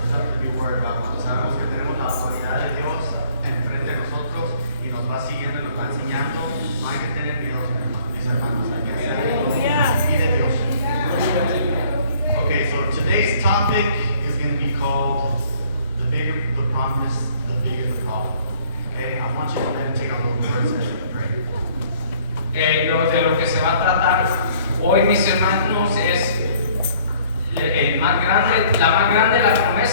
nothing to be worried about. Cuando sabemos que tenemos la autoridad de Dios enfrente de nosotros y nos va siguiendo y nos va enseñando, no hay que tener miedo, mis hermanos. Hay que seguir de Dios. Okay, so today's topic is going to be called the bigger the promise, the bigger the problem. Okay, I want you to meditate on those words as you pray. De lo que se va a tratar hoy, mis hermanos, es la más grande la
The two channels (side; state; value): both; inverted; correlation -0.58